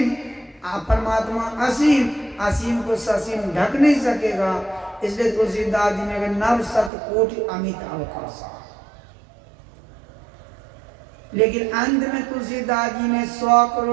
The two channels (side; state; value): left; drops out; at 6.9 s